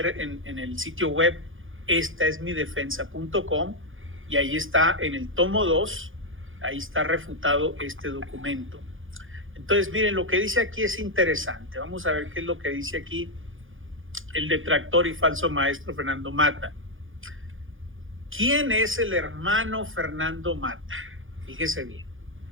en el sitio web estaesmidefensa.com, y ahí está en el tomo 2, ahí está refutado este documento. Entonces, miren, lo que dice aquí es interesante. Vamos a ver qué es lo que dice aquí el detractor y falso maestro Fernando Mata. ¿Quién es el hermano Fernando Mata? Fíjese bien.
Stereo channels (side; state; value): left; late; 0.58 ms